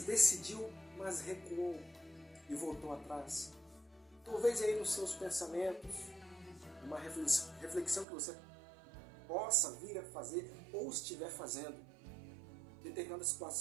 decidiu, mas recuou e voltou atrás? Talvez aí nos seus pensamentos, uma reflexão que você possa vir a fazer ou estiver fazendo. Determinada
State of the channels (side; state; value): left; drops out; at 8.1 s